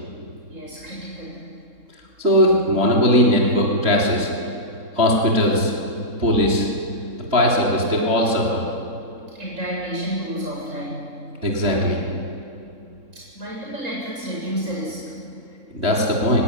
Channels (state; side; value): late; left; 3.7 ms